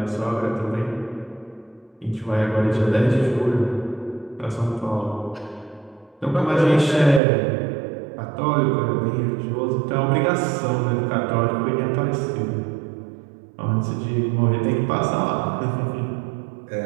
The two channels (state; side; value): drops out; left; at 7.2 s